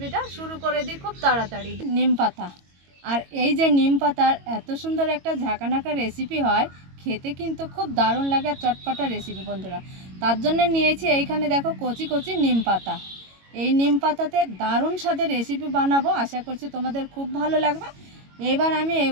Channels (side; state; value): left; late; 22 ms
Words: শুরু করে দিই খুব তাড়াতাড়ি। নিম পাতা, আর এই যে নিম পাতার এত সুন্দর একটা ঝাঁকানাকা রেসিপি হয়, খেতে কিন্তু খুব দারুণ লাগে আর চটপটা রেসিপি বন্ধুরা। তার জন্য নিয়েছি এইখানে দেখো কচি কচি নিম পাতা। এই নিম পাতাতে দারুণ স্বাদের রেসিপি বানাবো, আশা করছি তোমাদের খুব ভালো লাগবে। এবার আমি